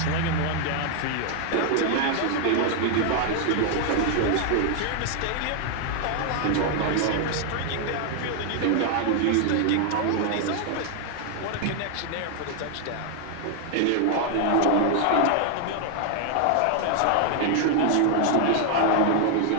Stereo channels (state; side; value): different; both; correlation 0.00